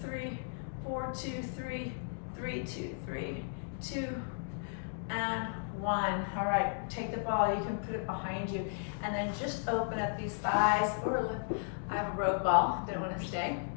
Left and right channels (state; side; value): silent; right; digital silence